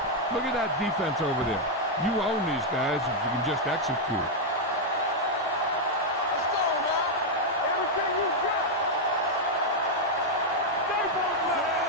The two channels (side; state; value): both; normal; correlation -0.01